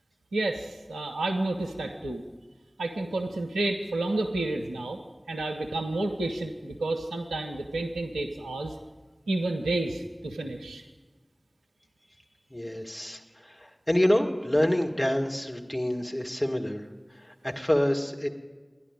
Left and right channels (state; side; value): normal; both; correlation 0.96